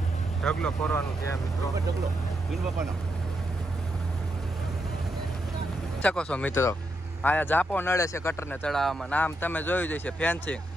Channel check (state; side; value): normal; both; correlation 0.83